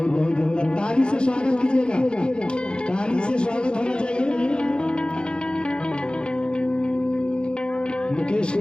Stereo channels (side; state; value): right; late; 0.051 ms